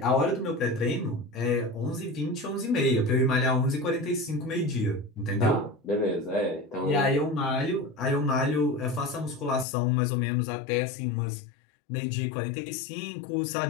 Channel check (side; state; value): right; drops out; at 9.7 s